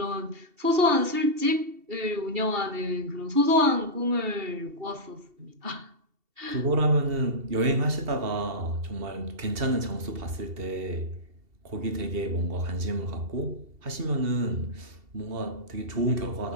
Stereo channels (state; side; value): late; left; 2.7 ms